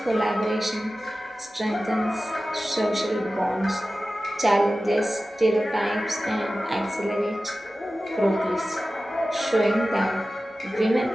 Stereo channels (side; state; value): both; normal; correlation 0.95